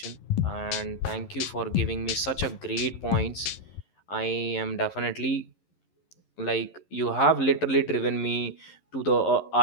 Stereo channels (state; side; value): late; right; 11 ms